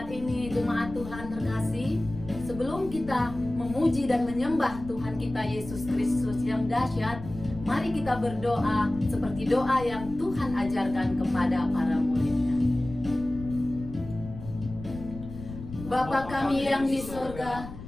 ini jemaat Tuhan terkasih, sebelum kita memuji dan menyembah Tuhan kita Yesus Kristus yang dahsyat, mari kita berdoa seperti doa yang Tuhan ajarkan kepada para muridnya. Bapa kami yang di surga,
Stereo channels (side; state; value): left; noise; rumble, 12 dB below the sound